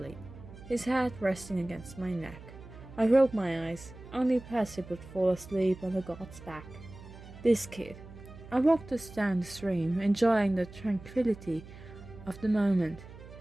his head resting against my neck. I rolled my eyes. Only Percy would fall asleep on the god's back. This kid. I walked us down the stream, enjoying the tranquility of the moment.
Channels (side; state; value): right; noise; hum, 17 dB below the sound